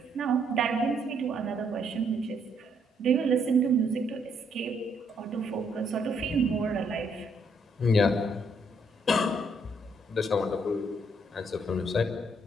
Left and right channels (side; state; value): both; normal; correlation 0.71